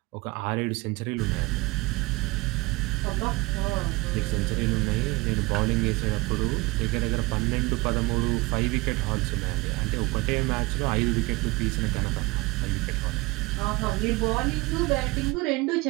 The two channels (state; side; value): quieter; left; 23.6 dB